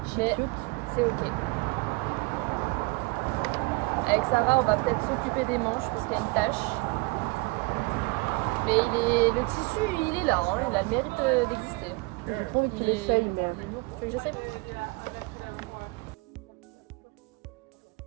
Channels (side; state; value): left; quieter; 26.8 dB